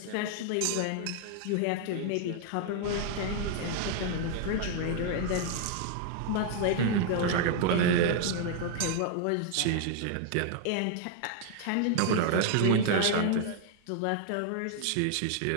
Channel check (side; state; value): both; different; correlation 0.00